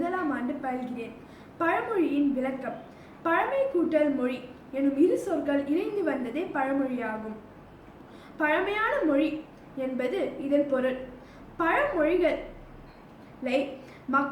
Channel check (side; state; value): both; identical; correlation 1.00